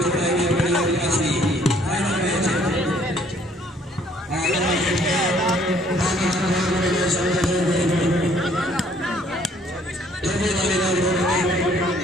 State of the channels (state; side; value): normal; both; correlation 0.62